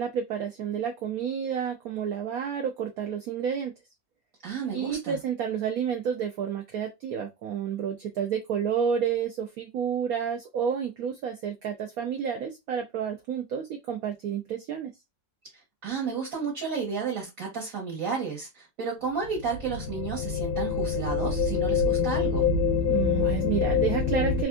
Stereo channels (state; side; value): normal; both; correlation 0.14